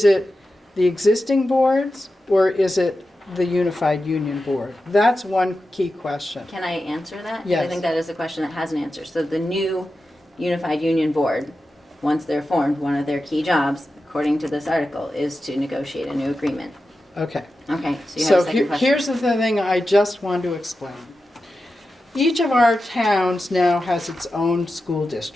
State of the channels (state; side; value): normal; both; correlation 0.91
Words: it the existing boards or is it the unified union board? That's one key question. Can I answer that? Yes. I think that is a question that has an answer. So the new unified union board, once they're formed, one of their key jobs, according to this article, is to negotiate a new agreement. Okay. Okay, so you have a So second question. here's the thing I just want to explain. Each of our towns now has its own school